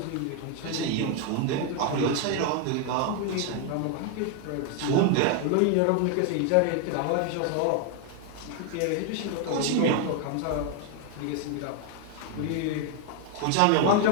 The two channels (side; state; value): both; different; correlation 0.01